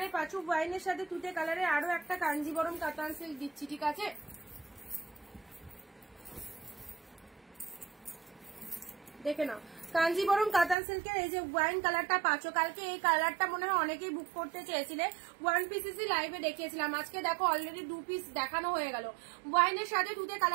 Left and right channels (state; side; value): drops out; left; at 10.8 s